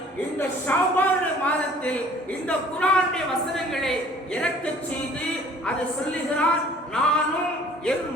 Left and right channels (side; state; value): both; normal; correlation 0.52